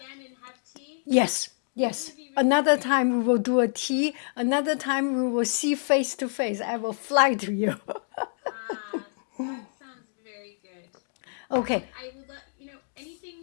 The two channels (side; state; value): right; silent; digital silence